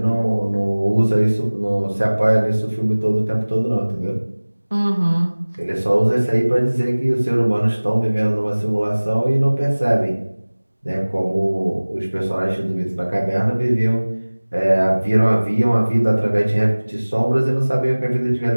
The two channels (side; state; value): both; inverted; correlation -1.00